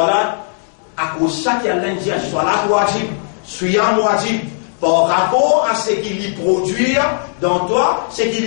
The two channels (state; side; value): silent; right; digital silence